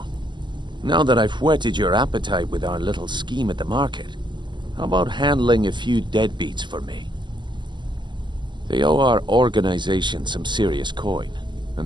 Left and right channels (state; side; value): late; left; 0.22 ms